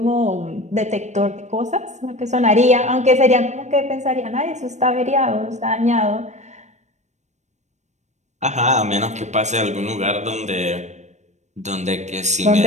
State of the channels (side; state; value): left; late; 0.34 ms